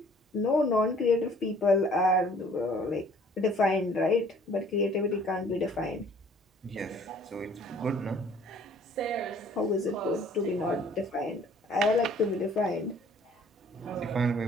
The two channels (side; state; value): both; normal; correlation 0.56